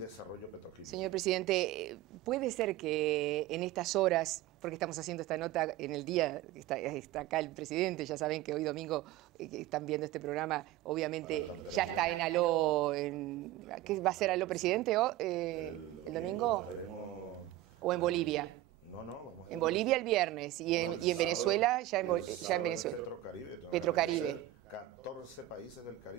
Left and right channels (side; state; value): left; quieter; 14.7 dB